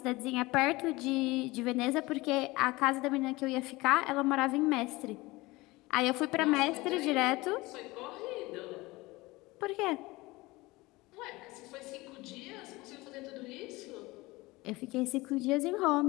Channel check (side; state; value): right; quieter; 21.4 dB